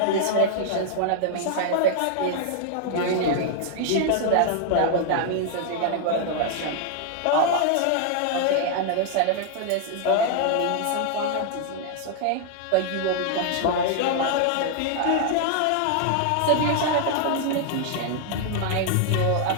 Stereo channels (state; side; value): different; both; correlation 0.00